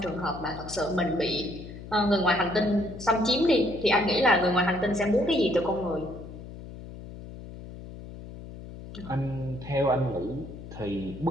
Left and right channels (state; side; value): noise; left; hum, 13 dB below the sound